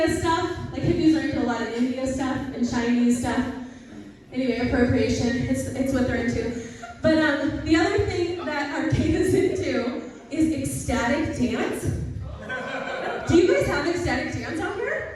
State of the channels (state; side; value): identical; both; correlation 1.00